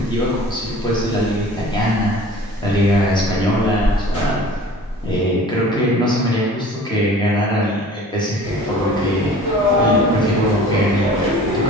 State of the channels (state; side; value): normal; both; correlation 0.45